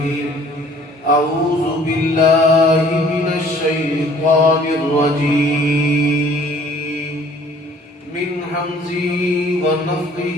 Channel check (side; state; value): both; normal; correlation 0.55